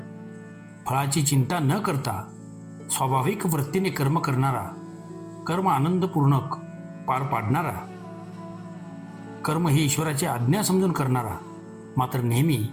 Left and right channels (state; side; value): identical; both; correlation 1.00